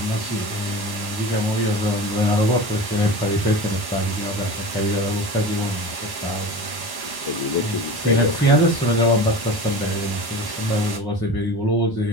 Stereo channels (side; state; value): right; late; 1.1 ms